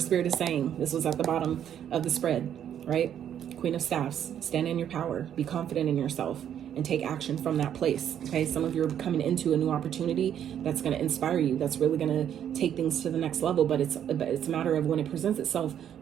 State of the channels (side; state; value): left; quieter; 9.7 dB